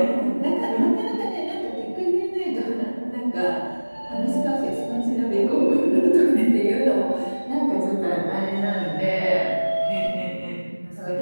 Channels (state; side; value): inverted; both; correlation -1.00